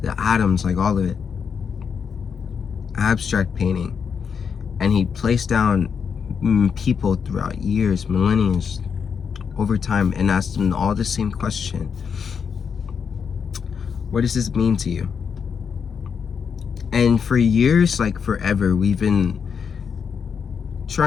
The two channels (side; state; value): right; quieter; 6.6 dB